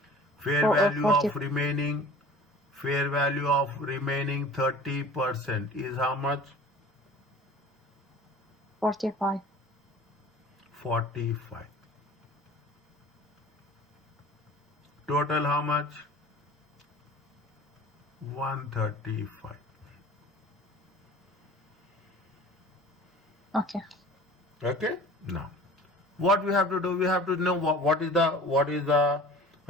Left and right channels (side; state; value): both; normal; correlation 0.44